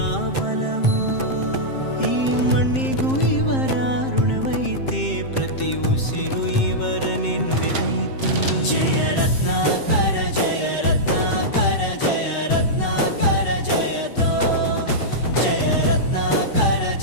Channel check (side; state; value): right; late; 7.6 ms